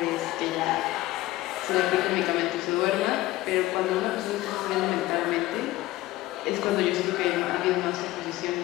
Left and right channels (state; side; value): quieter; right; 16.9 dB